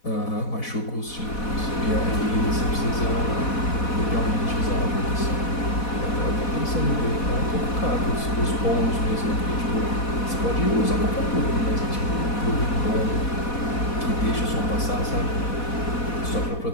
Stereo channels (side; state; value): right; late; 4.1 ms